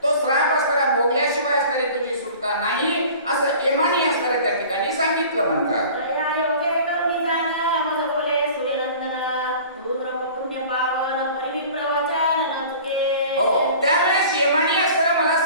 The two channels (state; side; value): inverted; both; correlation -0.44